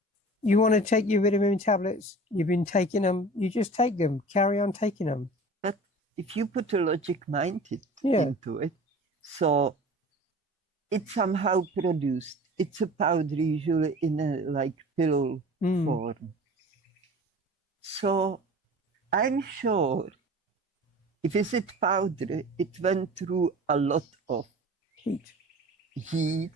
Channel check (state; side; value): normal; both; correlation 0.40